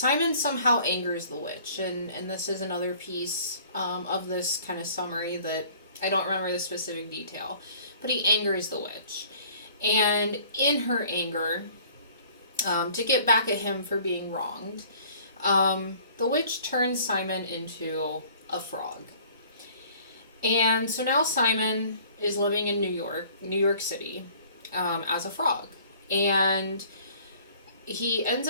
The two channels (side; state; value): both; inverted; correlation -0.53